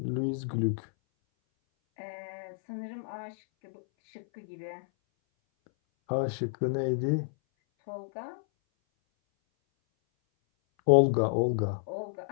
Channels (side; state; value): right; silent; 58 dB below the other